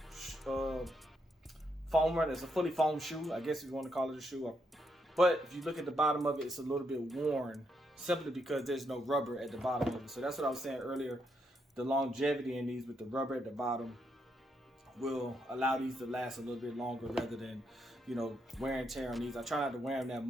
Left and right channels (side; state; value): both; normal; correlation 0.78